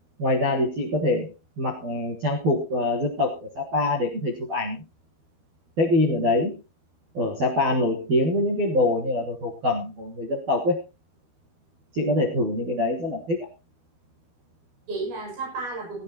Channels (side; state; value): left; late; 12 ms